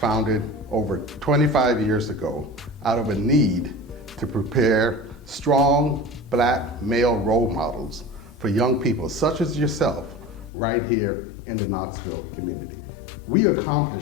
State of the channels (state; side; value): drops out; right; at 10.5 s